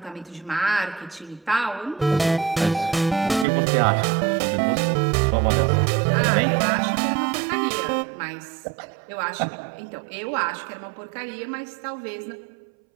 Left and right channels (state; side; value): drops out; left; at 3.5 s